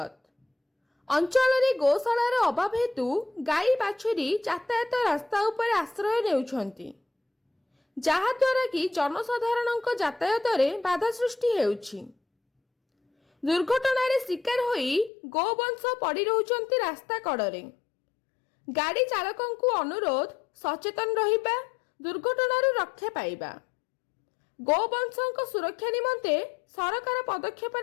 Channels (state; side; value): drops out; right; at 15.1 s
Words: अंचल रे गोशालार अभाव हेतु गाई बाछुरी यातायात रास्ता उपर आश्रय नेउछंती, जहा द्वारा कि जनसाधारण यातायात रे बाधा सृष्टि हेउछि। दुर्घटना रे शिकार होई गोवंश पड़ी रहउछंती रास्ता कड़रे। गाड़ी चालकंकु अनुरोध सचेतन रहिबा, दुर्घटना रू रक्षा पाइबा। गोवंशों सुरक्षा निमंते सरकार पदक्षेप